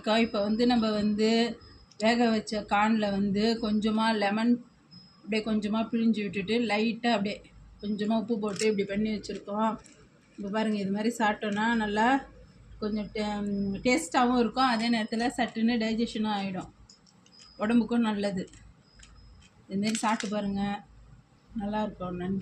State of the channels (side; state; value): both; identical; correlation 1.00